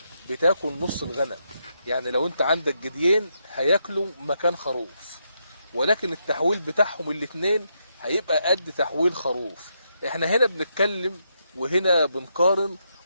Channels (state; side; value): inverted; both; correlation -0.80